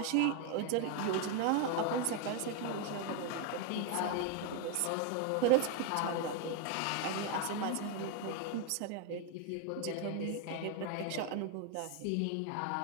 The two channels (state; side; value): different; both; correlation 0.01